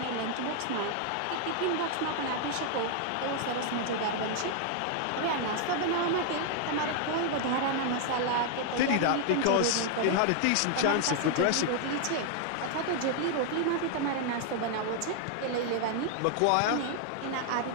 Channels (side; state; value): both; different; correlation 0.00